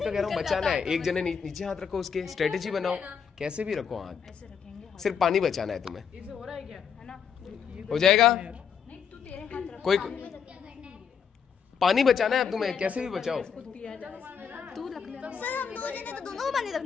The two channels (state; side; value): quieter; right; 7.0 dB